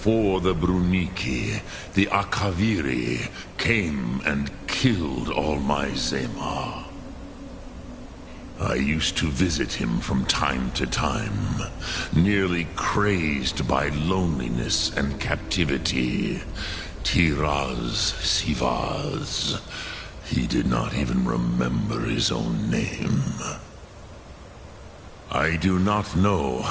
the Bruniki, the Akaviri came and killed all my Zemar. I used to visit him from time to time, nearly crazed by loneliness and captivity. Tiraz Sivaz. He did not even remember his own name. I do not know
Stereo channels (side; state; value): both; identical; correlation 1.00